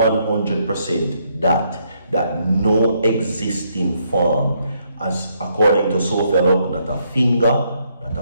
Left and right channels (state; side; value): inverted; both; correlation -0.73